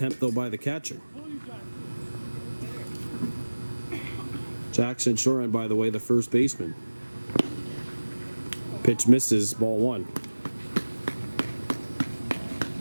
though, by the catcher. Jackson Shoren, by the way, the first baseman. Pitch misses, ball 1.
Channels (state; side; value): inverted; both; correlation -1.00